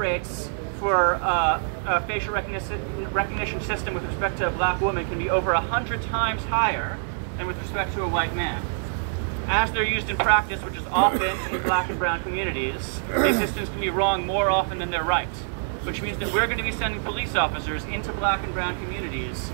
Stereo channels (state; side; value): silent; left; digital silence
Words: for a facial recognition system with respect to a black woman can be over 100 times higher than with respect to a white man. As they're used in practice, which is often in black and brown communities, these systems can be wrong more often than they're right, which means that we're going to be sending police officers into black and brown communities